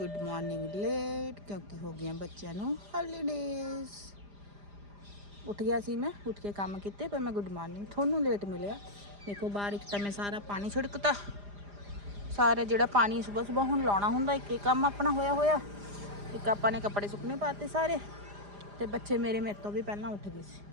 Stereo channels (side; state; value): left; late; 4.9 ms